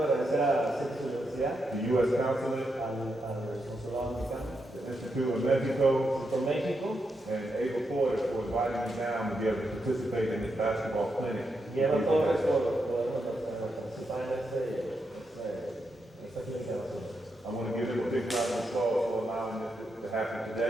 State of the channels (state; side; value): normal; both; correlation 0.83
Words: agradecer a CETES Universidad, the U.S. Consulate, al Consulado Americano, the Institute of Mexico, por México, and Ava Porter for inviting me down to be able to participate in this basketball clinic. y Eva Torres por poder participar en esta clínica de nosotros. I want to give them a big round of applause for allowing this to happen